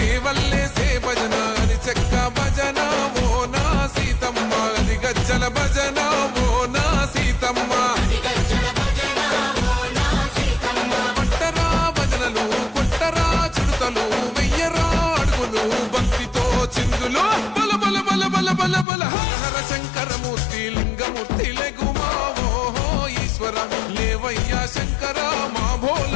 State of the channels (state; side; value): drops out; right; at 18.9 s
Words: భజన అది చెక్క భజన ఓ నా సీతమ్మ అది గజ్జల భజన ఓ నా సీతమ్మ కొట్టరా భజనలు కొట్టరా చుడతలు వెయ్యరా అడుగులు భక్తితో చిందులు బల బల బల బల బల బల హర శంకరమూర్తి లింగమూర్తి లెగుమా ఓహో ఈశ్వర లేవయ్యా శంకర మా